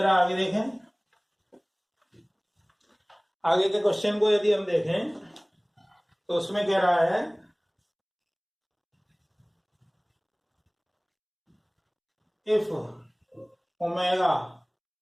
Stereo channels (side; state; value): both; identical; correlation 1.00